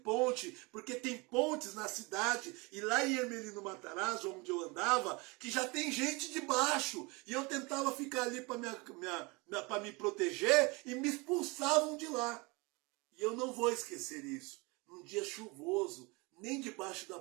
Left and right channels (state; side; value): quieter; left; 26.7 dB